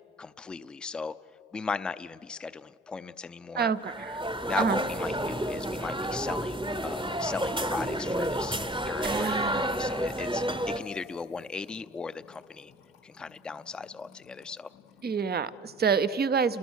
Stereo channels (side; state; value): both; normal; correlation 0.49